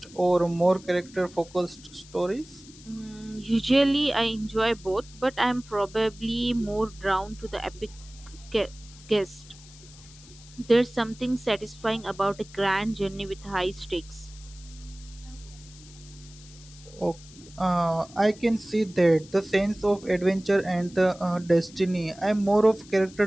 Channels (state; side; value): noise; left; hiss, 21 dB below the sound